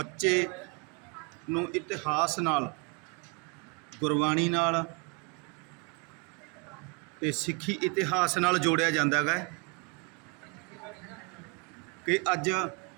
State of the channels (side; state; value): left; quieter; 29.4 dB